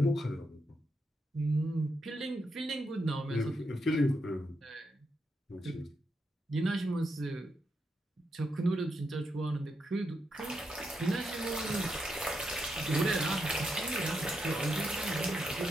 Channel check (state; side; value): normal; both; correlation 0.83